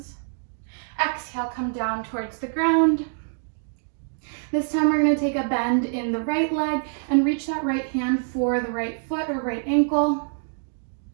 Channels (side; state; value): left; silent; digital silence